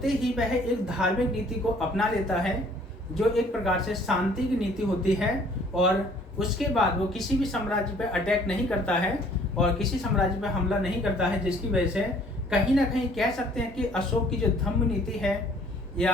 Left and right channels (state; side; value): normal; both; correlation 0.57